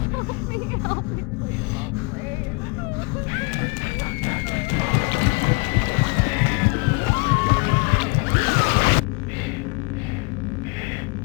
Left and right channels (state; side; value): quieter; right; 27.8 dB